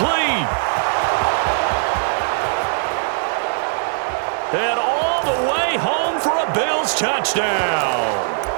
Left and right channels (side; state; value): left; silent; digital silence